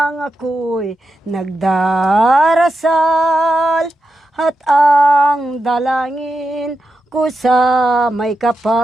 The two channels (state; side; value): normal; both; correlation 0.88